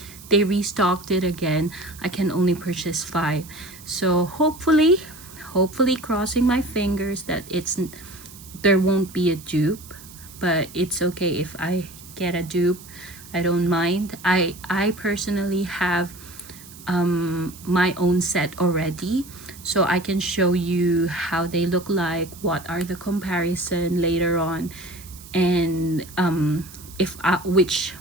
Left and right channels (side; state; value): right; noise; hiss, 19 dB below the sound